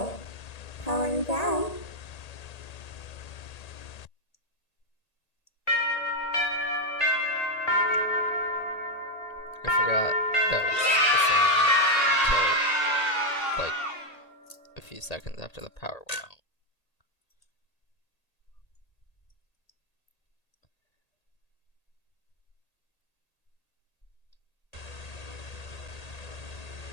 Powering down. I forgot that was the same until like a few seconds after the power went out.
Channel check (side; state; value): right; late; 1.8 ms